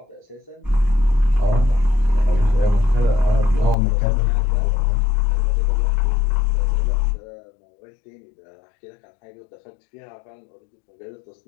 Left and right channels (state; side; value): drops out; right; at 3.8 s